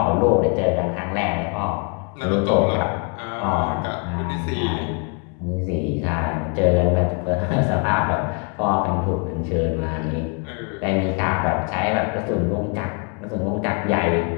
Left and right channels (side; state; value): right; quieter; 35.4 dB